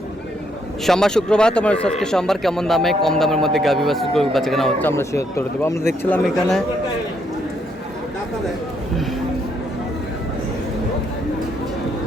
সোমবার শুক্রবার। তোমার আজকে সোমবার কেমন দামে কম দামের মধ্যে গাভী বাচ্চা কেনা হচ্ছে আমরা সে উত্তর দেবো। আমরা দেখছিলাম এখানে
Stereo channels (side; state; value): both; normal; correlation 0.73